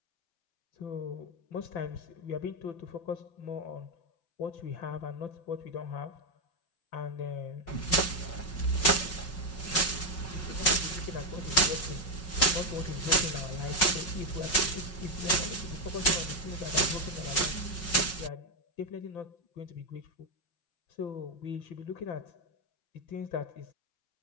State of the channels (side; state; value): right; late; 5.4 ms